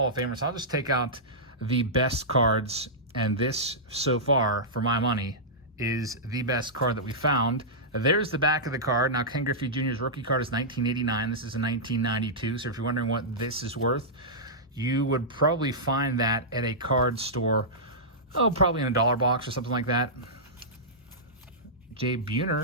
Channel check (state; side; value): normal; both; correlation -0.13